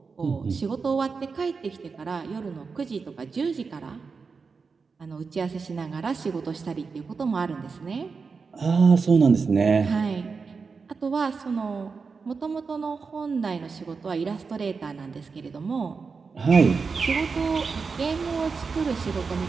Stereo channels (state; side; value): quieter; left; 4.9 dB